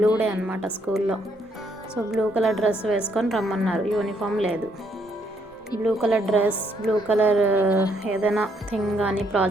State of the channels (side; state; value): both; normal; correlation 0.71